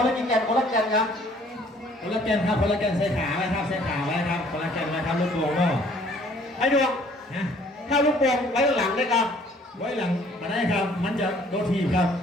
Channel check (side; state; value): both; normal; correlation 0.58